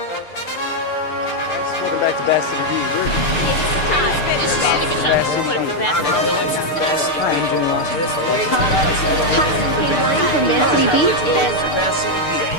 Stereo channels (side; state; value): right; late; 6.7 ms